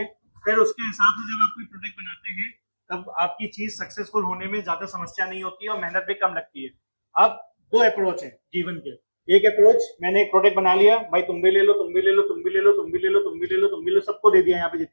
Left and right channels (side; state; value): both; inverted; correlation -1.00